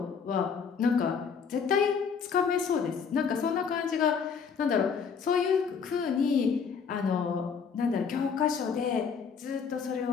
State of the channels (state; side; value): quieter; right; 6.2 dB